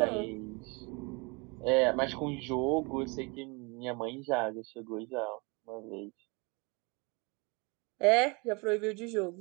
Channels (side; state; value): left; quieter; 29.7 dB